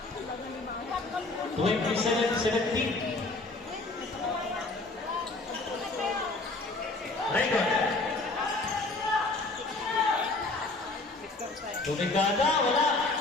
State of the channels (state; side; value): quieter; right; 3.2 dB